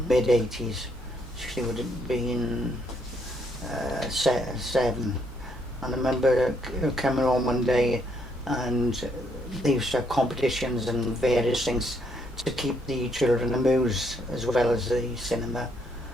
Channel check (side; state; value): both; normal; correlation 0.72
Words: mid-80s. She would have been 7. And I remember coming home one day, and they used to have competitions and various things to keep the children amused as well as the cinema.